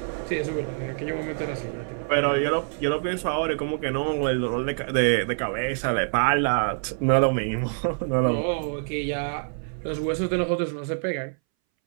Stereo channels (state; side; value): silent; left; 61 dB below the other